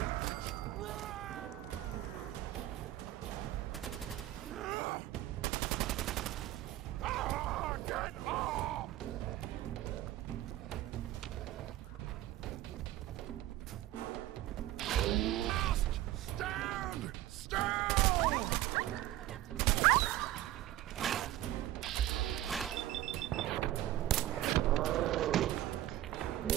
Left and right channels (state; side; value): quieter; left; 14.5 dB